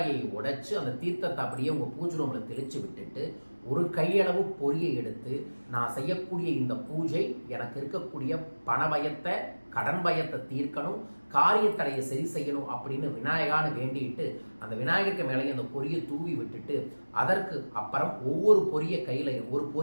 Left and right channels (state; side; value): inverted; both; correlation -1.00